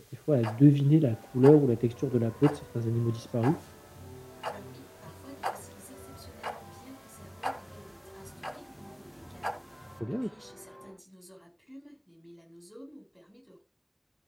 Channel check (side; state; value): both; identical; correlation 1.00